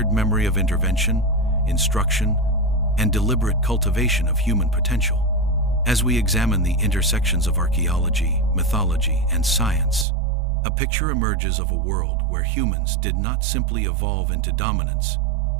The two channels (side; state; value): left; drops out; at 10.1 s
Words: memory of intervention, instruction, and deliberate cultivation of human potential. As we examine the intersections of archaeology, mythology, and science, a picture emerges of a world where humans did not simply evolve into dominance,